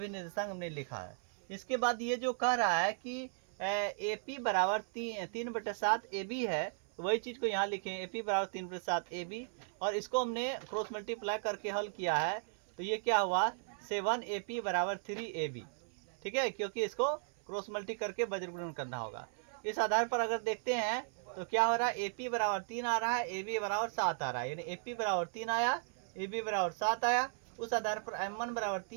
निर्देशांक हमने लिखा है। इसके बाद ये जो कह रहा है कि AP बराबर 3/7 AB है, तो वही चीज़ को यहाँ लिखें, AP बराबर 3/7 AB, और इसको हमने क्रॉस मल्टीप्लाई करके हल किया है। तो ये क्या हुआ, 7AP बराबर 3AB। ठीक है, क्योंकि इसको क्रॉस मल्टी करके वज्र गुणन करना होगा। इस आधार पर अगर देखते हैं तो क्या हो रहा है, AP बराबर 3 आ रहा है, AB बराबर 7 आ रहा है, यानी AP बराबर 3 आया, AB बराबर 7 आया। उस आधार पर M1 बराबर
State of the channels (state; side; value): silent; left; 54 dB below the other